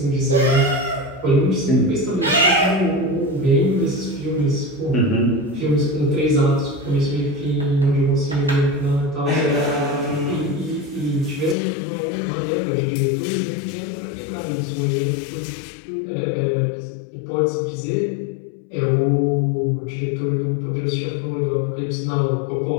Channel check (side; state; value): right; drops out; at 11.6 s